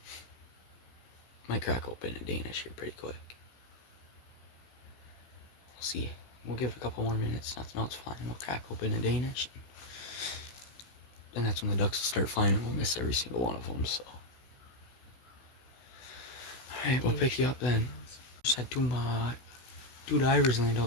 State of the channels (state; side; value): late; right; 16 ms